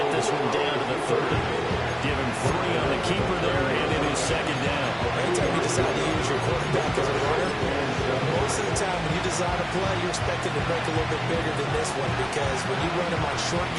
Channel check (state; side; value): identical; both; correlation 1.00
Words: this one down to the 30. Give him 3 on the keeper there, and it is second down. Anytime you decide to use your quarterback as a runner, most of the time when you design a play, you're expected to break a little bit bigger than this one, because when you run him on short